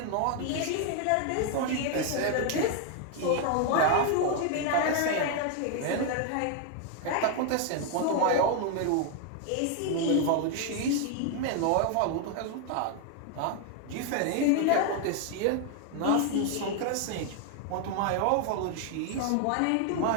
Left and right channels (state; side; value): different; both; correlation 0.00